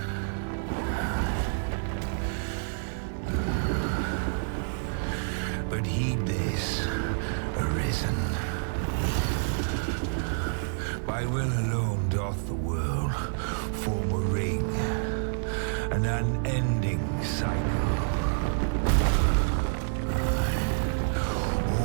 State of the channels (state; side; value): silent; left; digital silence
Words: But heed this, Arisen. By will alone doth the world form a ring, an unending cycle.